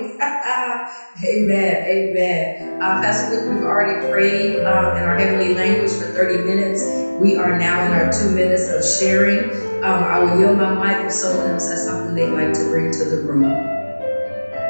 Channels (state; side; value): inverted; both; correlation -1.00